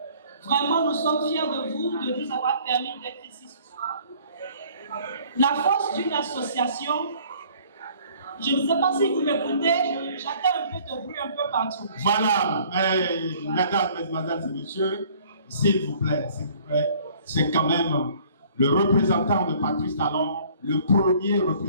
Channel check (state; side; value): inverted; both; correlation -0.56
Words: Vraiment, nous sommes fiers de vous, de nous avoir permis d'être ici ce soir. La force d'une association, je ne sais pas si vous m'écoutez, j'entends un peu de bruit un peu partout. Voilà, mesdames, mesdemoiselles et messieurs, s'il vous plaît, c'est quand même le représentant de Patrice Talon, le premier